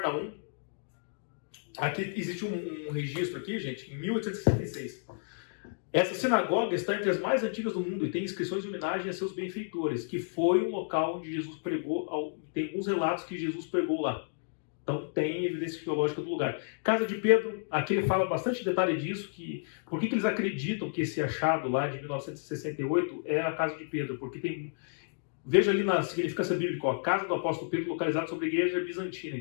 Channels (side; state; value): right; silent; digital silence